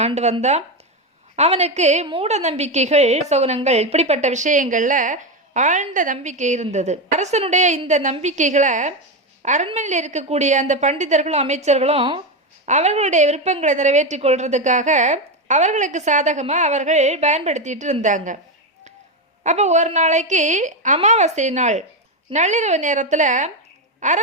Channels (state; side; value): normal; both; correlation 0.11